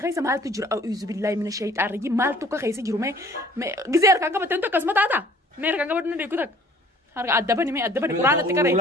keessa maaltu jiru a'uuzu billaahi mina shayxaan rajim maaltu akka keessa jiru mee gizee harkaan qabatten tokko akkasuma taata mee harkaan qabatu na deeku takka harka addabani quraanatti qaree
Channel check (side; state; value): both; normal; correlation 0.54